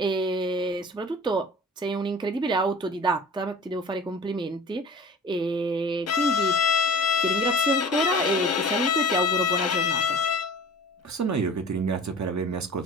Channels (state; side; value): normal; both; correlation 0.41